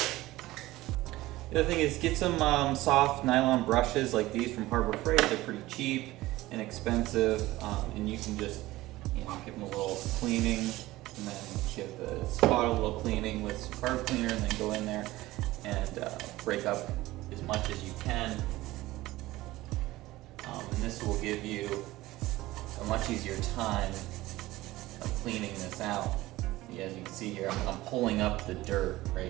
The other thing is get some soft nylon brushes like these from Harbor Freight. They're pretty cheap, inexpensive, and you can just give them a little cleaning, and then give the spot a little cleaning with some carb cleaner, and then go in there and break up as much as you can. And this will give you a much easier time of cleaning this out. As you can see here, I'm pulling up the dirt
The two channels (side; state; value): left; quieter; 17.8 dB